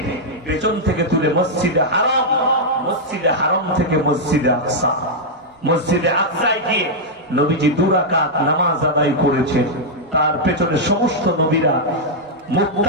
পেছন থেকে তুলে মসজিদে হারাম, মসজিদে হারাম থেকে মসজিদে আকসা, মসজিদে আকসায় গিয়ে নবীজি 2 রাকাত নামাজ আদায় করেছেন। তার পেছনে সমস্ত নবীরা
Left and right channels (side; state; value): both; normal; correlation -0.05